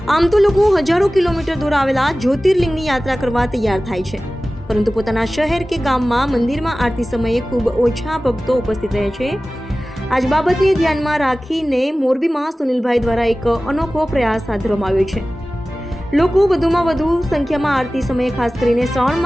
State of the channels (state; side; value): normal; both; correlation 0.97